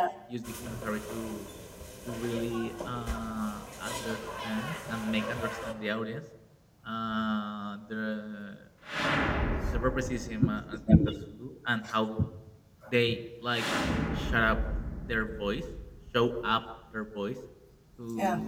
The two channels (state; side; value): identical; both; correlation 1.00